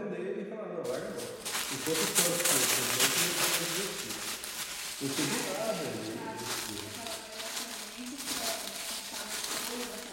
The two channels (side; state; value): both; identical; correlation 1.00